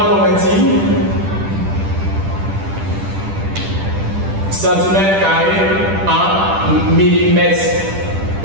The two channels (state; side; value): late; left; 10 ms